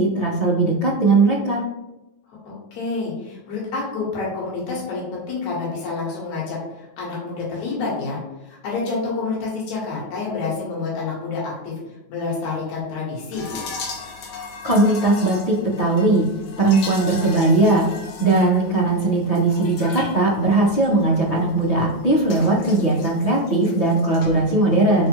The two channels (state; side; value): late; right; 9.2 ms